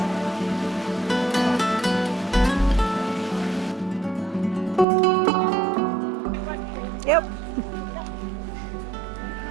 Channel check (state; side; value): drops out; left; at 4.9 s